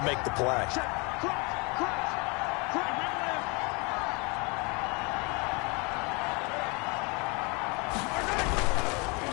make the play.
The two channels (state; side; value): quieter; right; 29.9 dB